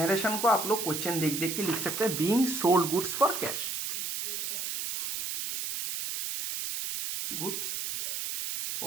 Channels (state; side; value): noise; right; hiss, 3 dB below the sound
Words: को आप लोग क्वेश्चन देख देख के लिख सकते हैं, being sold goods for cash, goods